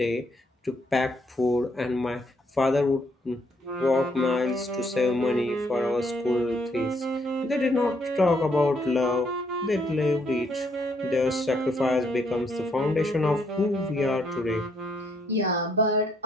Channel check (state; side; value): normal; both; correlation 0.71